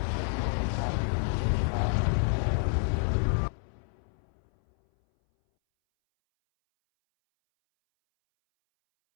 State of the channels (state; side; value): silent; right; 59 dB below the other